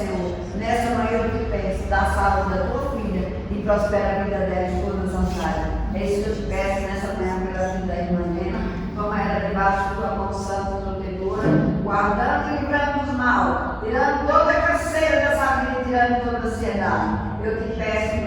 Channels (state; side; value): identical; both; correlation 1.00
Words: Nessa manhã eu te peço, dá a saúde da tua filha e prospera a vida dela em todas as áreas. É isso que eu te peço nessa manhã pela vida da irmã Nena. Toma ela debaixo da tua mão santa e protetora, guardando e livrando dos mal, tirando toda a canseira dessa vida, tirando toda a ansiedade. Eu te peço